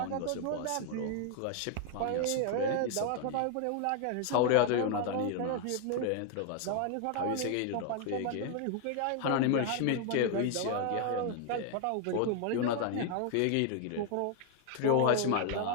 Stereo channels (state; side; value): different; both; correlation 0.00